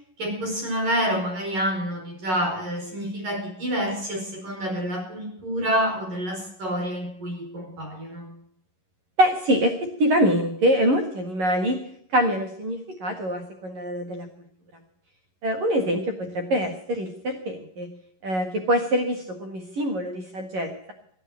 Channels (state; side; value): late; left; 11 ms